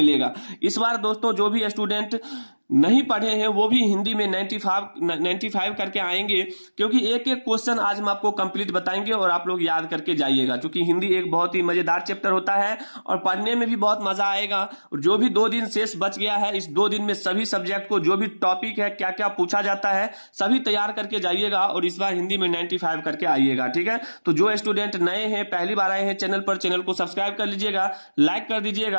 इस बार दोस्तों, जो भी स्टूडेंट नहीं पढ़े हैं वो भी हिंदी में 95 करके आएंगे, क्योंकि एक एक क्वेश्चन आज हम आपको कंप्लीट बताएंगे और आप लोग याद करके जाइएगा, क्योंकि हिंदी एक बहुत ही मजेदार चैप्टर होता है और पढ़ने में भी बहुत मजा आएगा। और जो भी 2 दिन शेष बच गया है, इस 2 दिन में सभी सब्जेक्ट को जो भी टॉपिक है, क्या क्या पूछा जाता है, सभी तैयार करके जाइएगा और इस बार हिंदी में 95 करके आइएगा। ठीक है, तो जो स्टूडेंट नए हैं, पहली बार आए हैं चैनल पर, चैनल को सब्सक्राइब कर लीजिएगा, लाइक कर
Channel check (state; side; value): inverted; both; correlation -1.00